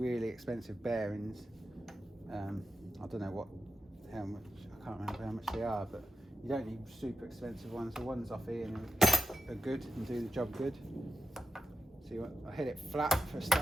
expensive bearings. I don't know how much, I can't remember how much they are, but you don't need super expensive ones. The ones off Ian are good and do the job good. So I hit it flat for a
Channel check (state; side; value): normal; both; correlation 0.88